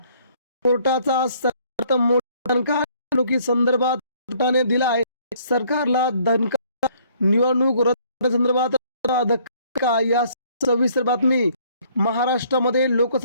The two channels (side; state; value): both; inverted; correlation -0.61